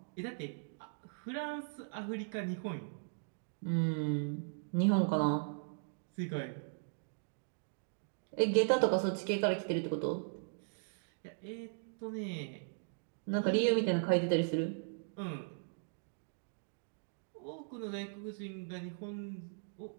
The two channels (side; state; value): left; silent; digital silence